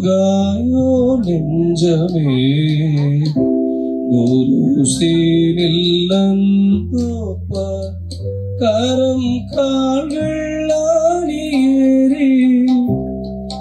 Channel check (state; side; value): identical; both; correlation 1.00